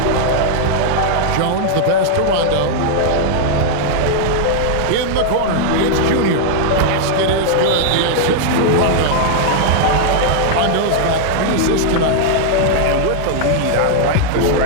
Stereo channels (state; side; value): different; both; correlation -0.01